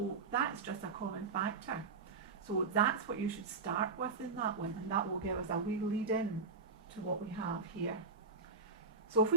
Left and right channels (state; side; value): quieter; left; 4.4 dB